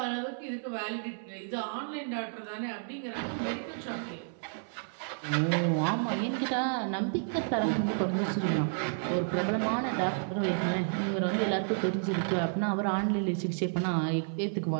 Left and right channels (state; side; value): silent; left; 57 dB below the other